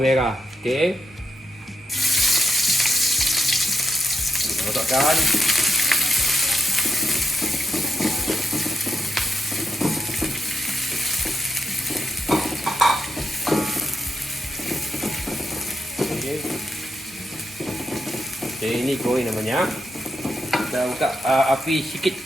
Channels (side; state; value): both; normal; correlation 0.83